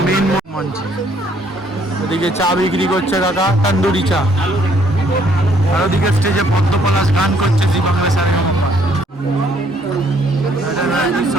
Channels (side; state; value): both; normal; correlation 0.65